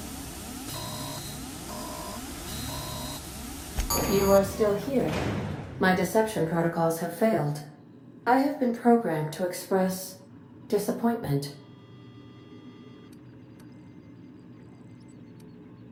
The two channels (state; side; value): identical; both; correlation 1.00